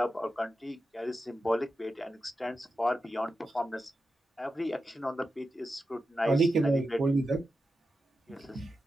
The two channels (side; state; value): both; normal; correlation 0.90